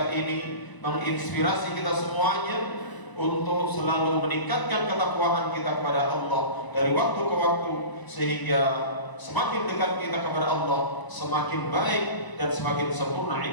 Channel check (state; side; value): late; right; 1.0 ms